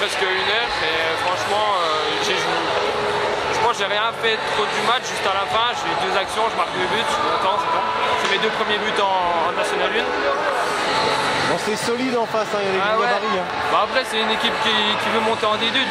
1 heure et franchement, je pense que j'ai rien fait trop du match. Juste à la fin, j'ai eu 2 actions, je marque 2 buts, je suis content, c'est bon. C'est mes 2 premiers buts en National 1. Bon, c'est solide en face, hein, il y a des gabarits. Hein. Bah après, c'est une équipe qui veut monter en D2,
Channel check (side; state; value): both; identical; correlation 1.00